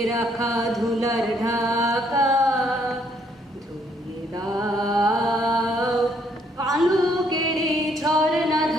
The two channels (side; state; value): both; normal; correlation 0.68